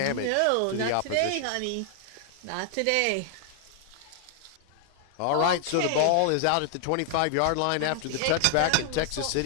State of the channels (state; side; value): different; both; correlation 0.00